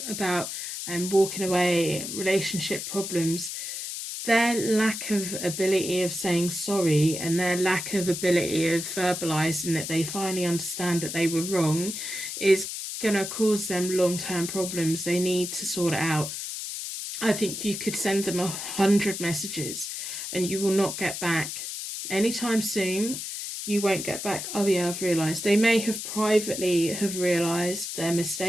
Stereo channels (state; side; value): noise; left; hiss, 6 dB below the sound